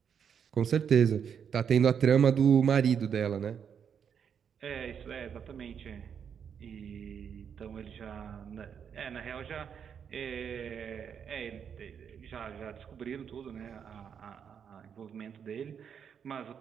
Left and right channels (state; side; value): quieter; left; 7.6 dB